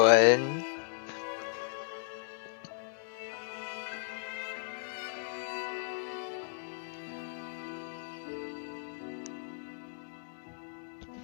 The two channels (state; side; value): silent; right; digital silence